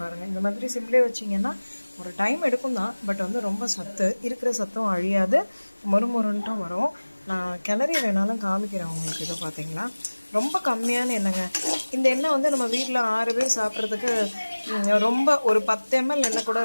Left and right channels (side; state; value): both; inverted; correlation -1.00